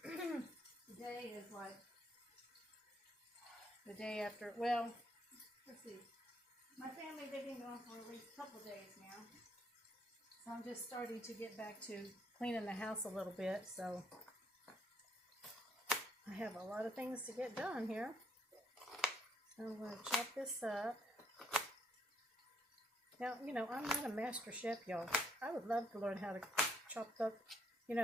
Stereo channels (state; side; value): normal; both; correlation 0.70